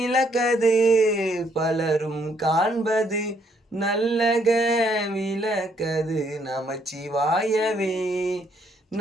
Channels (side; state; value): both; normal; correlation 0.70